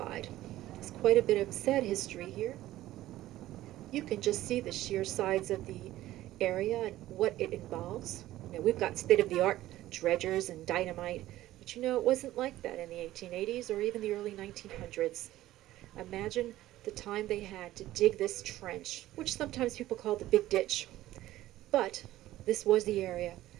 There's quite a bit of sad history here. You can just see the sheer sides of the area and what it involves. You know, we've got state-of-the-art dredgers and dynamite, but you know, it wasn't like that in the 1880s or even the early 1900s. Imagine the time they had to dig this trench, which sometimes people call the Big Ditch. But this was the area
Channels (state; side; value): quieter; left; 15.1 dB